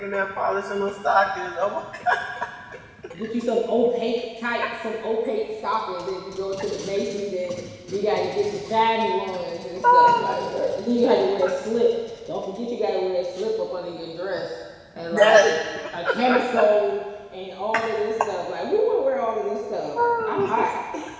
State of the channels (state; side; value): identical; both; correlation 1.00